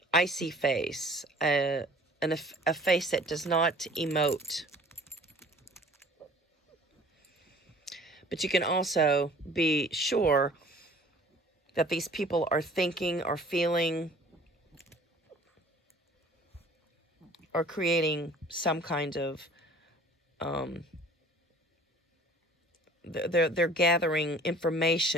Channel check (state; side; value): normal; both; correlation 0.49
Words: icy face, a face that does not emote. But you can also be sure that these people are thinking or feeling or creating some kind of they're gathering